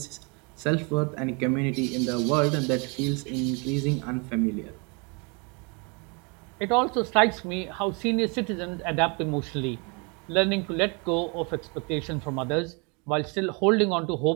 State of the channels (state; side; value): quieter; left; 32.2 dB